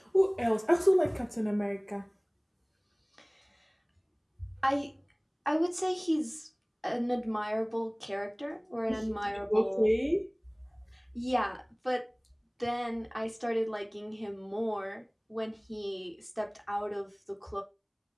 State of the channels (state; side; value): identical; both; correlation 1.00